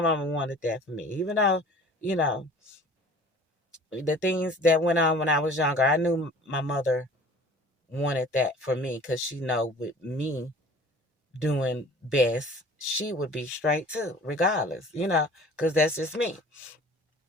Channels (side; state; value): both; normal; correlation 0.46